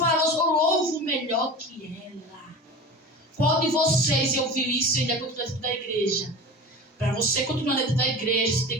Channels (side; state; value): both; normal; correlation 0.33